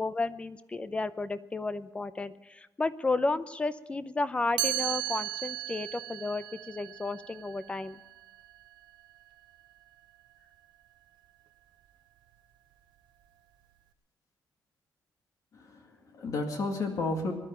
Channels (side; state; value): both; normal; correlation 0.73